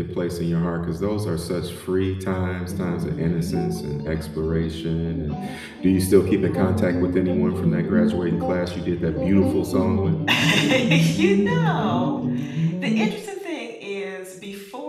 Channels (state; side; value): identical; both; correlation 1.00